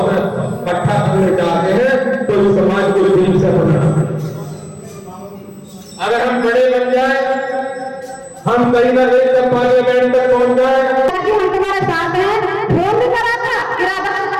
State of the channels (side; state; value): both; identical; correlation 1.00